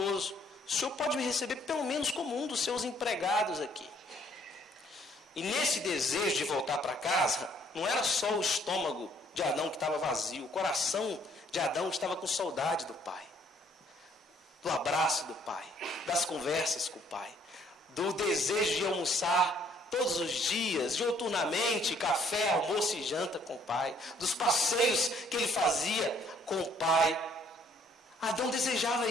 o Senhor pode me receber pelo menos como um dos seus empregados aqui. E nesse desejo de voltar para casa, não era só o estômago de Adão que estava vazio, o coração de Adão estava com saudade do pai, do abraço do pai, das conversas com o pai, do desejo de almoçar todos os dias, diuturnamente, café, almoço e janta com o pai, dos passeios que ele fazia com o pai. Adão desejava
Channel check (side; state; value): both; normal; correlation 0.64